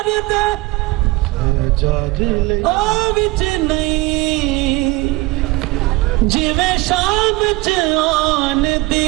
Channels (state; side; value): quieter; left; 21.7 dB